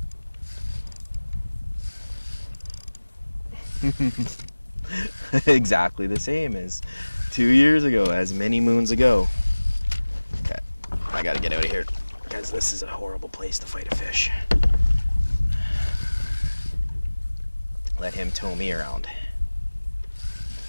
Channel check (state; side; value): inverted; both; correlation -1.00